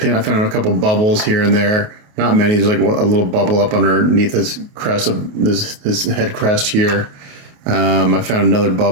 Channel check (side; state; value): left; late; 28 ms